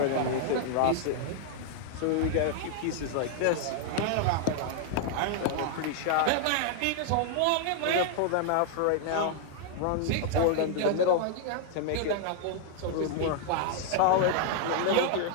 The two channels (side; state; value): both; different; correlation 0.00